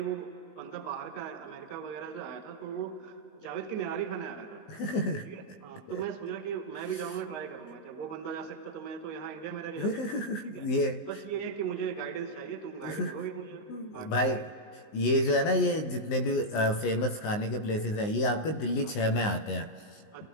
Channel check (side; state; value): right; late; 19 ms